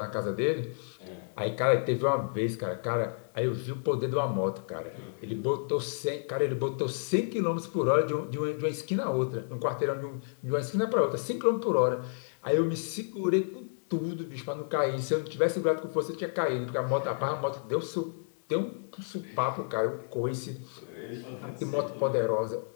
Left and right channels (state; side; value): silent; right; digital silence